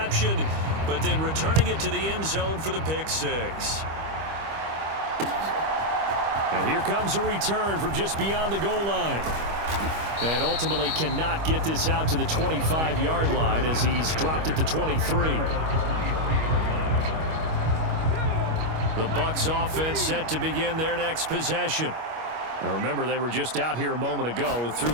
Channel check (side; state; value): left; late; 25 ms